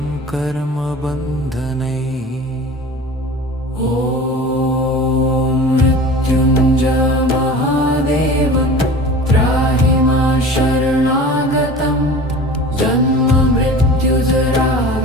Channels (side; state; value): both; normal; correlation 0.39